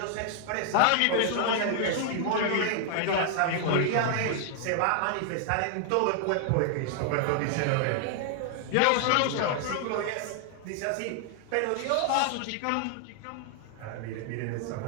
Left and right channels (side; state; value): both; different; correlation 0.00